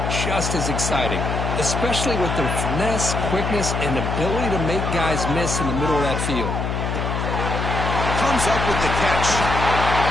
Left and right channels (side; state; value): left; noise; hum, 2 dB below the sound